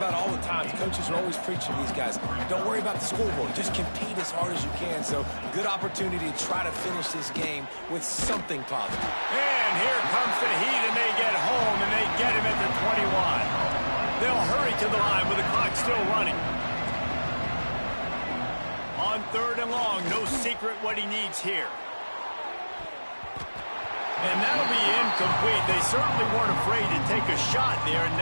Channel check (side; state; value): both; inverted; correlation -1.00